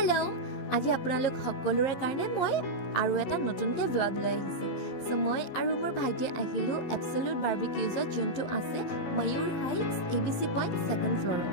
আজি আপোনালোক সকলোৰে কাৰণে মই আৰু এটা নতুনকৈ vlog লৈ আহিছোঁ। So মই আৰু মোৰ ভাইটি আহিলোঁ Absolute Barbecues যোনটো আছে Mayur Heights ABC Point second floor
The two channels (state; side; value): late; right; 11 ms